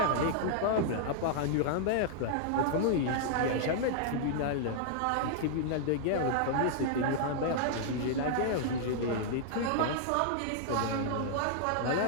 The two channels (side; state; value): both; different; correlation -0.01